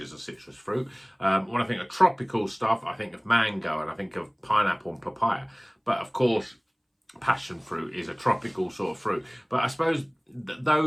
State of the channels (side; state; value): both; identical; correlation 1.00